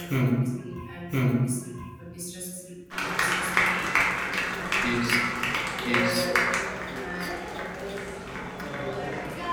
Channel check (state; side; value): identical; both; correlation 1.00